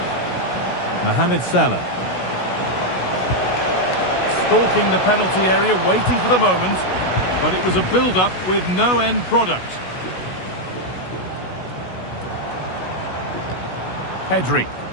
Mohamed Salah. Stalking the penalty area, waiting for the moment. But it was a build-up with no end product. Pedri.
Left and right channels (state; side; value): late; right; 16 ms